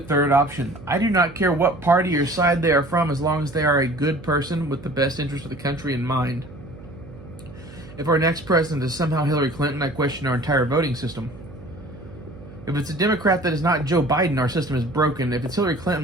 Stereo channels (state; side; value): noise; right; hum, 17 dB below the sound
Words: option. I do not care what party or side they are from, as long as they are a good person with the best interest of the country in mind. If our next president is somehow Hillary Clinton, I question our entire voting system. If it's a Democrat that is not Joe Biden, our system is broken. If it's Hillary